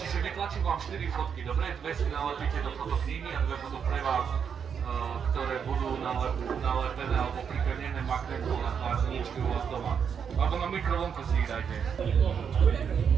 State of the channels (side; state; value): left; quieter; 7.1 dB